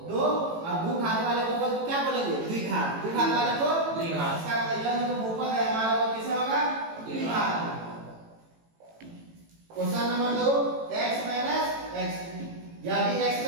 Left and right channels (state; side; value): late; left; 18 ms